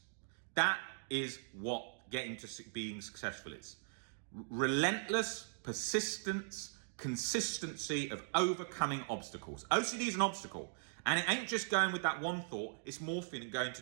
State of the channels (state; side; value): silent; left; digital silence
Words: That is what getting to being successful is. Relentless persistence, consistency of overcoming obstacles. OCD is an obstacle, and it ain't just going with that one thought, it's morphing and going to